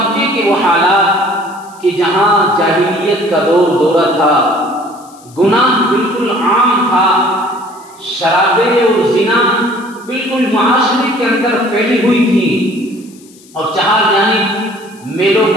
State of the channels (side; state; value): left; noise; hiss, 25 dB below the sound